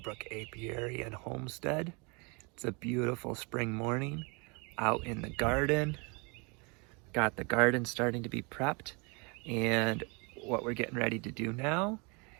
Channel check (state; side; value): quieter; left; 31.3 dB